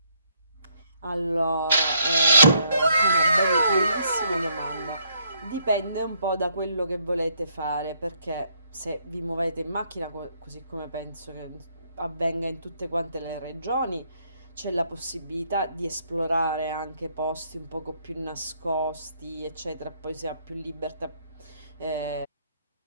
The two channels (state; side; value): inverted; both; correlation -0.71